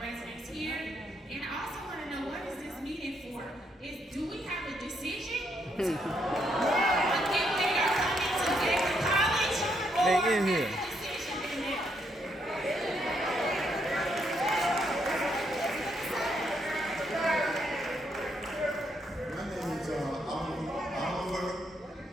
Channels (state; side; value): normal; both; correlation 0.75